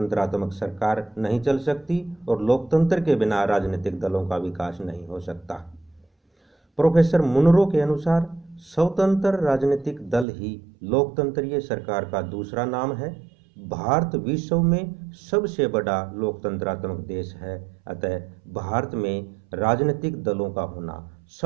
सरकार नहीं चल सकती और लोकतंत्र के बिना राजनीतिक दलों का विकास नहीं हो सकता। प्रोफेसर मुनरो के अनुसार स्वतंत्र राजनीतिक दल ही लोकतंत्रीय सरकार का दूसरा नाम है। भारत विश्व में सबसे बड़ा लोकतंत्रात्मक देश है, अतः भारत में राजनीतिक दलों का होना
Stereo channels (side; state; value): left; drops out; at 10.2 s